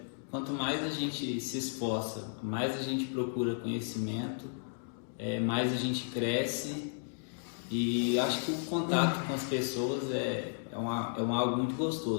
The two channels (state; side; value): silent; right; digital silence